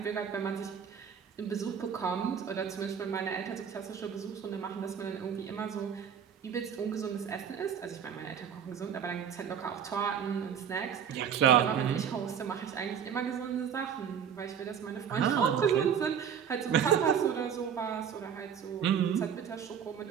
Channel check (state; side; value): quieter; left; 8.0 dB